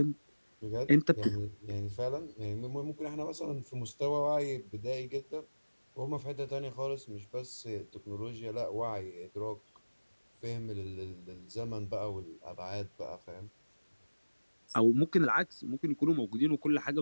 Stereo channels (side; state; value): both; inverted; correlation -1.00